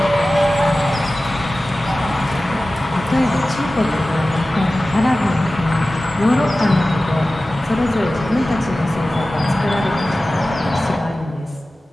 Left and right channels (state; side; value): normal; both; correlation 0.96